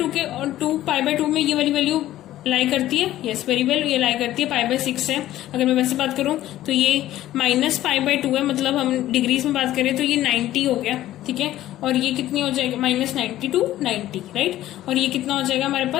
के और 2π/2 में ये वाली वैल्यू लाई करती है, यस वेरी वेल, ये लाई करती है, π/6 है। अगर मैं वैसे बात करूं तो ये -π/2 है, मतलब हम डिग्रीज में बात करें तो ये 90 हो गया। ठीक है, और ये कितनी हो जाएगा, -90 to 90, राइट। और ये कितना हो जाएगा हमारे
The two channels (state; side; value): quieter; right; 14.1 dB